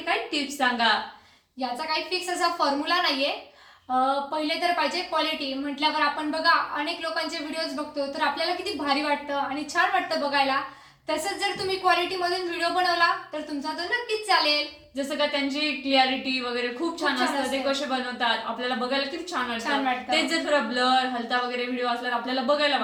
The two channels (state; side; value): identical; both; correlation 1.00